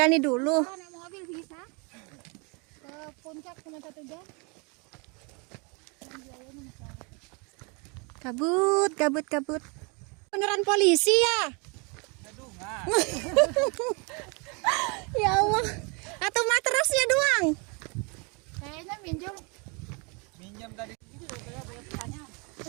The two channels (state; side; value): quieter; left; 32.0 dB